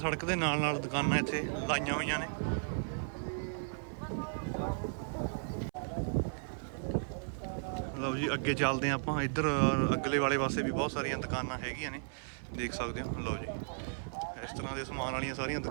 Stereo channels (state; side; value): silent; left; 54 dB below the other